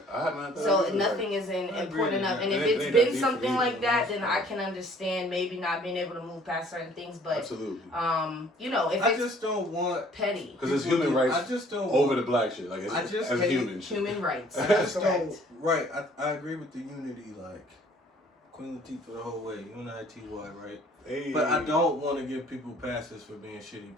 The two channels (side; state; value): both; normal; correlation 0.56